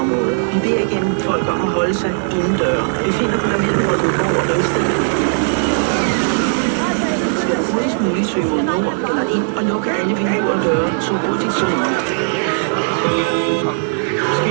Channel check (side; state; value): left; silent; 66 dB below the other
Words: Vi beder igen folk om at holde sig indendøre. Vi finder på der mellem Vordingborg og Ringsted. Skal du hurtigst muligt søge mod nord eller ind og lukke alle vinduer og døre så hurtigt som muligt.